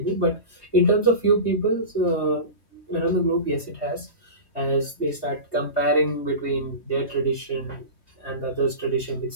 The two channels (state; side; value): late; right; 3.2 ms